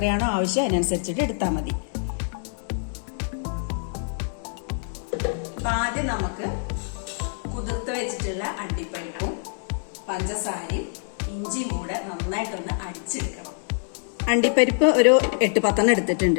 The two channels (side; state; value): right; silent; 61 dB below the other